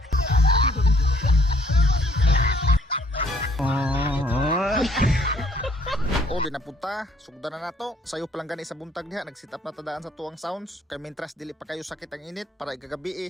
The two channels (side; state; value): both; normal; correlation 0.63